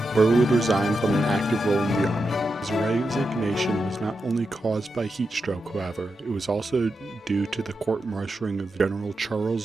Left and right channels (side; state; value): both; normal; correlation 0.88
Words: Burr would resign from an active role in the army. His resignation was not only caused by heat stroke, however, it was also due to the court-martialing of General